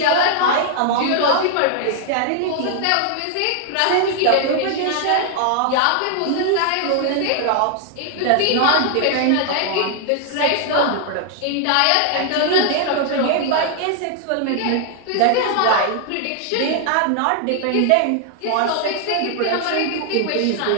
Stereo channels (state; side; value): different; both; correlation 0.00